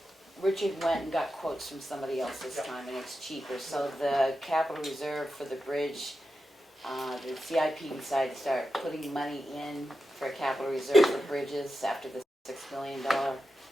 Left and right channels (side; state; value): both; normal; correlation 0.90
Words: Richard went and got quotes from somebody else this time, and it's cheaper. So the capital reserve for the bridge, the CIP decided to start putting money in for a capital reserve for bridges after the $6 million